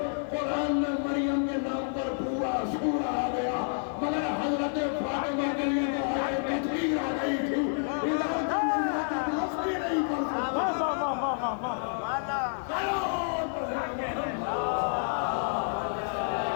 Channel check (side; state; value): right; silent; 56 dB below the other